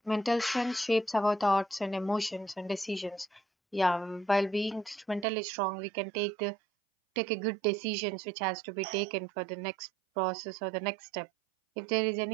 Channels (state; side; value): drops out; left; at 5.2 s